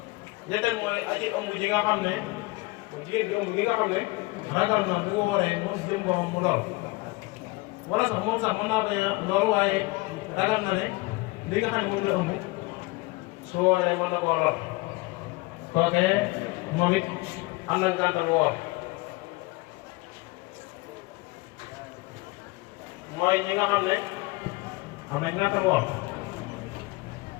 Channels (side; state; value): right; quieter; 23.3 dB